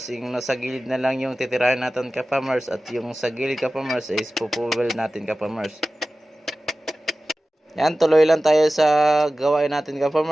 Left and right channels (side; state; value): both; normal; correlation 0.96